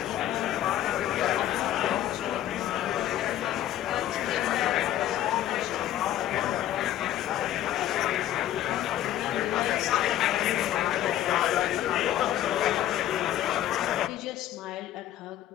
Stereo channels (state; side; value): quieter; right; 12.6 dB